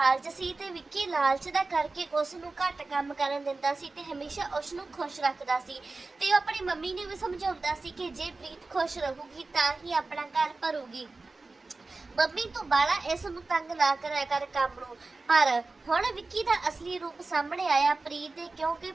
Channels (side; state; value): left; quieter; 3.6 dB